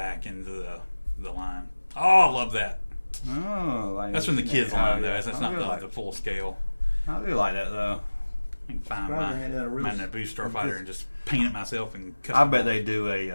into the line. Oh, I love that. Oh, that's from the kids' line, though. That's not the full scale. I do like that, though. I can find my Naboo Starfighter and just paint it myself and cut I bet they do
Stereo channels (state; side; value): inverted; both; correlation -1.00